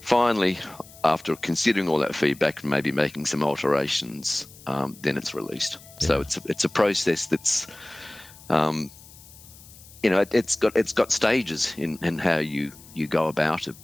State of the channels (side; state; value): left; noise; hiss, 21 dB below the sound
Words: finally, after considering all that feedback and maybe making some alterations, then it's released. So it's a process that's it's got stages in how you go about it,